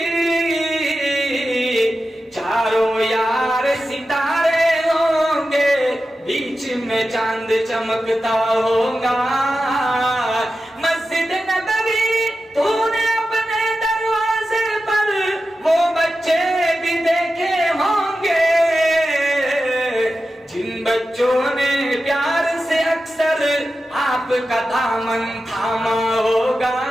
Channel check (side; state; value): both; normal; correlation 0.92